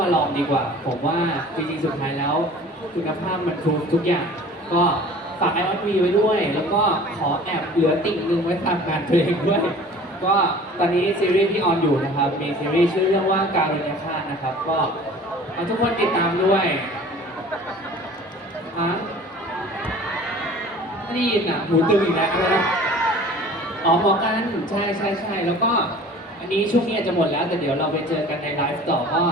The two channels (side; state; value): both; normal; correlation 0.45